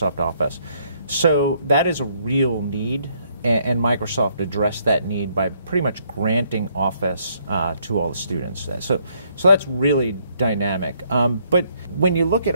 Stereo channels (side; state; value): both; inverted; correlation -0.69